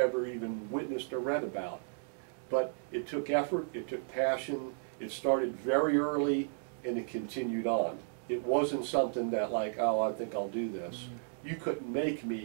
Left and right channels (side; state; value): left; silent; digital silence